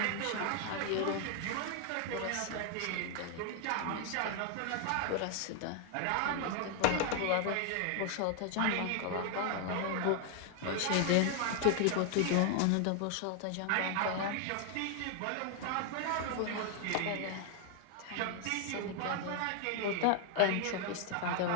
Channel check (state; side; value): different; both; correlation 0.00